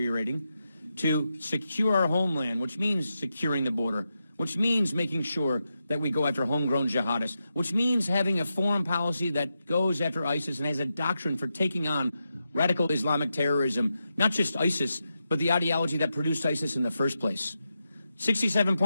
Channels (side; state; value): both; inverted; correlation -0.88